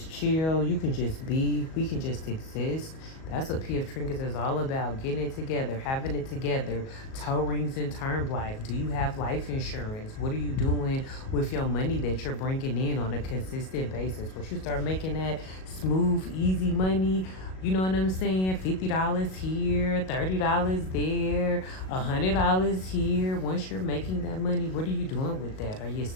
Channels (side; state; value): right; late; 38 ms